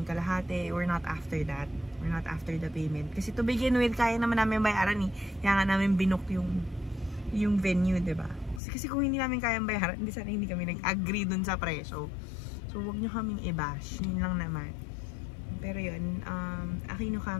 yung kalahati. We're not after that. We're not after the payment. Kasi to begin with, kaya naman namin bayaran eh. Kaya nga namin binook yung venue, diba? Kasi kung hindi namin kayang bayaran, hindi kami nag-agree dun sa presyo. So, huwag nyo kaming i-bash. Yun lang naman. Pero yun, Aquino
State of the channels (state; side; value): drops out; right; at 8.6 s